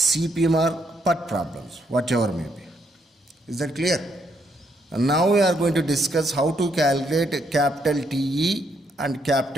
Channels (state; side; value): normal; both; correlation 0.74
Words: or PERT problems, whatever may be. Is that clear? And now we are going to discuss how to calculate capital TE and